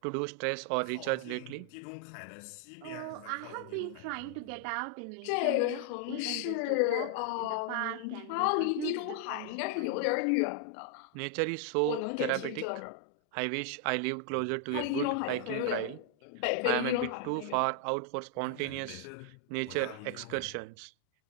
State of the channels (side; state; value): both; different; correlation 0.00